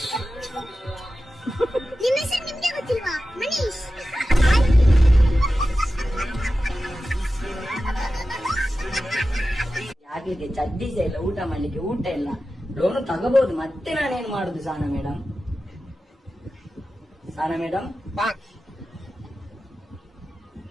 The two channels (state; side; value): normal; both; correlation 0.93